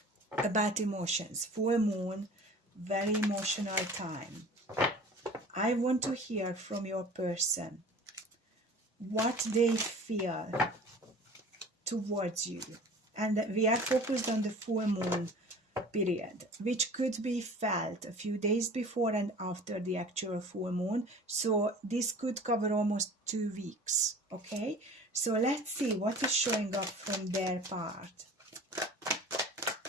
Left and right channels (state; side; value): normal; both; correlation 0.43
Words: about emotions. Full moon, very emotional time. I want to hear from your person what they feel towards you. And we are focused on the full moon period, which could be felt a few days before and after the actual full moon. So this could cover almost 2 weeks. Okay, so let's see what is showing up from their part.